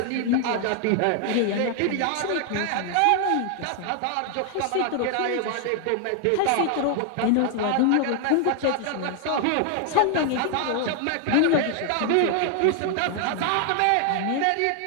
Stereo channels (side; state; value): both; different; correlation 0.00